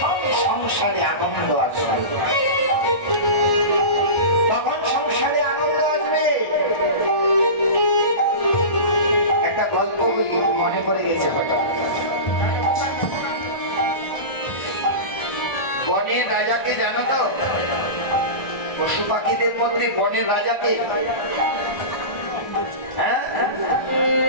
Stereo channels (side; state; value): right; late; 1.4 ms